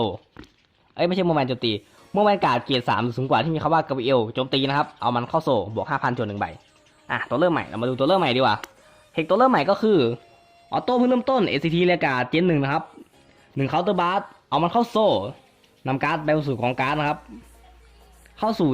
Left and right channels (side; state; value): both; identical; correlation 1.00